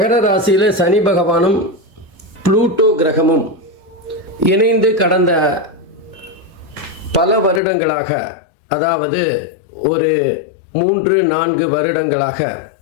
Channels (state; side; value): drops out; right; at 7.6 s